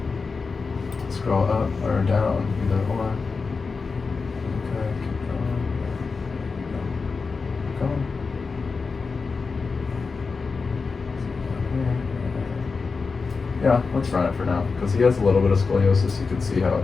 Scroll up or down, either or. Okay, keep going. Keep going. Yeah, let's run it for now, because he has a little bit of scoliosis. You can see how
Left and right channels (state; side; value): quieter; right; 4.6 dB